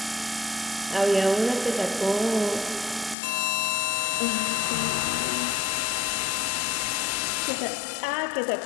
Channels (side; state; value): right; drops out; at 3.2 s